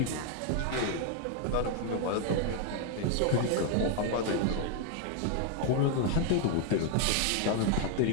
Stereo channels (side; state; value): both; different; correlation 0.01